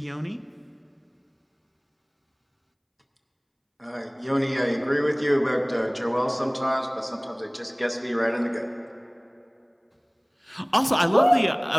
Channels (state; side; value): identical; both; correlation 1.00